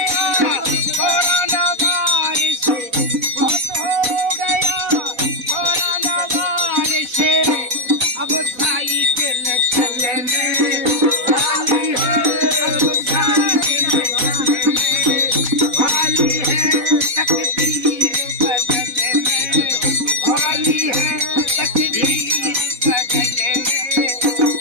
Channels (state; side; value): late; left; 4.0 ms